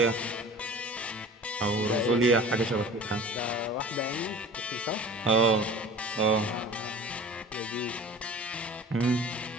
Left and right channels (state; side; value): normal; both; correlation 0.42